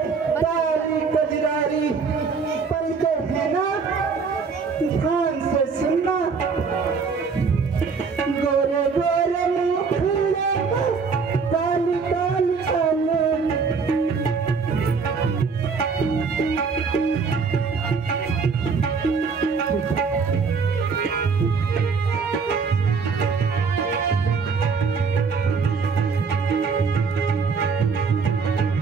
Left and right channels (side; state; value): left; quieter; 5.2 dB